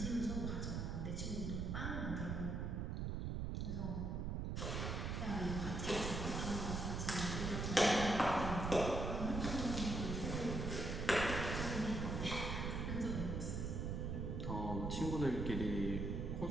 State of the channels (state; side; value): noise; right; rumble, 2 dB below the sound